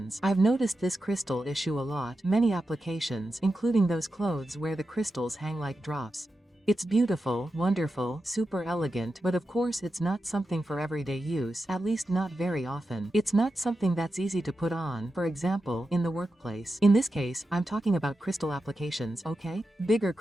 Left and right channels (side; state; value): both; normal; correlation 0.90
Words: I've noticed this crystal issue a lot, many applications, including those clothes where the crystals hang like drops. It's beautiful, wonderful, super elegant, but of course it's not something for everyday use, at least not very often. It's not something that's easy to put on, for example, in the workplace. In this case, I'm talking about crystal applications, okay? Bigger